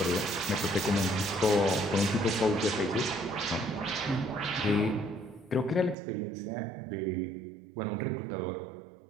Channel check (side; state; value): left; drops out; at 6.0 s